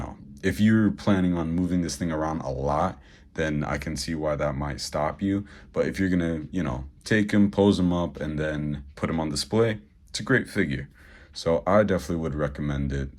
if you're planning on moving this thing around a lot, then I can see why that might stop you. But if you're going to, you know, take him, pose him up, and then put him on display, it's a great figure. So I definitely would recommend it.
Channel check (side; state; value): both; identical; correlation 1.00